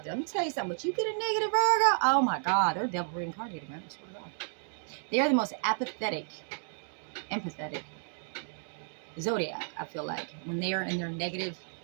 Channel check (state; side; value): silent; left; digital silence